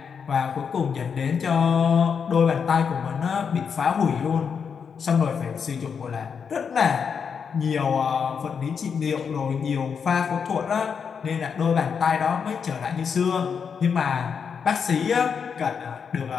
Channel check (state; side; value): quieter; right; 6.5 dB